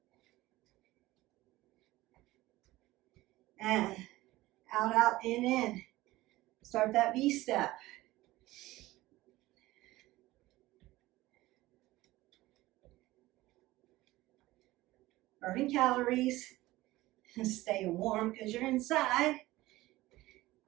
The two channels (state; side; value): quieter; left; 17.8 dB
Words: And out, out, in. Start that V step. Burning calories. And stay warm because you're inside.